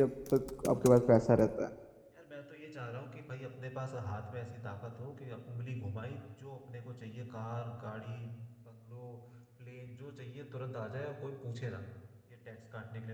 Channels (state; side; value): identical; both; correlation 1.00